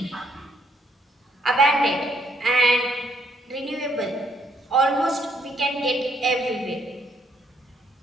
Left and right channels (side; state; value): both; normal; correlation 0.71